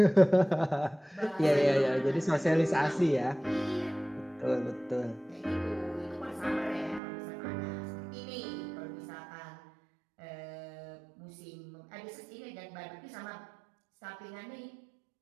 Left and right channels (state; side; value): drops out; left; at 7.0 s